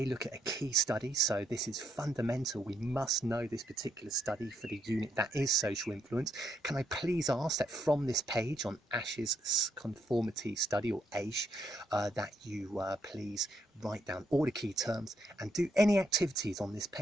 look at a key study, so this is fundamental. We must know this particular study for the unit that is social influence. Can I please ask that from this page on Asch's conformity study, or Asch, that you please write down all the key terms and do any activities on this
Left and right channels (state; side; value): normal; both; correlation 0.76